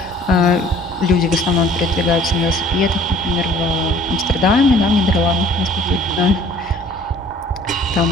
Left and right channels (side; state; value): both; normal; correlation 0.53